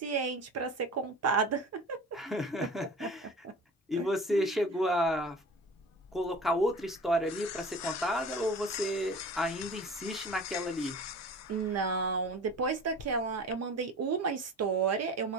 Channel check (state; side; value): normal; both; correlation 0.39